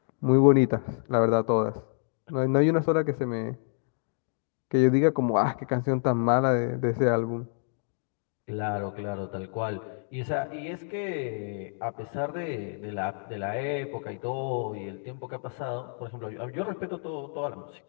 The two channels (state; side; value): silent; right; 59 dB below the other